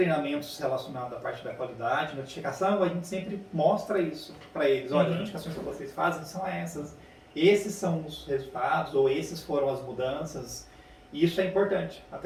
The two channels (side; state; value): both; identical; correlation 1.00